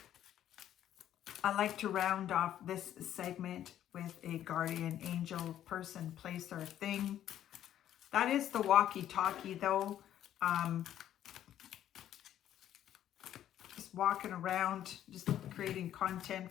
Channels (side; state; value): right; quieter; 11.3 dB